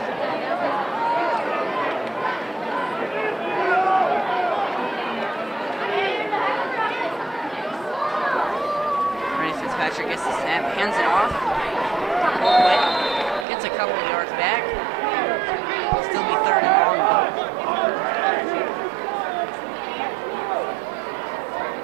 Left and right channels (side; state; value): left; drops out; at 13.5 s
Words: Patrick gets the snap, hands it off. Quick, gets a couple of yards back. It'll still be 3rd and long.